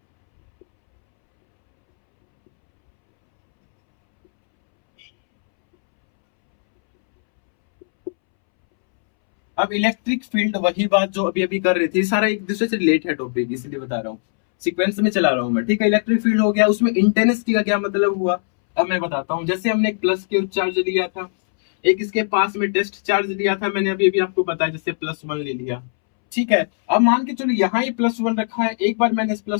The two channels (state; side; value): silent; right; 66 dB below the other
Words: अब इलेक्ट्रिक फील्ड, वही बात जो अभी अभी कर रहे थे, सारा एक दूसरे से रिलेट है टॉपिक, इसलिए बता रहा हूँ, सीक्वेंस में चला रहा हूं मैं। ठीक है, इलेक्ट्रिक फील्ड हो गया, उसमें इंटेंसिटी का क्या मतलब हुआ? अब मैं बताता हूँ। जैसे हमने एक प्लस क्यू चार्ज लिया था, एक इसके पास में टेस्ट चार्ज लिया था, मैंने अभी अभी आपको बताया, जैसे +1 ले लिया। ठीक है, अब मान के चलो यहाँ ही +1 रखा है, एक बार मैंने इस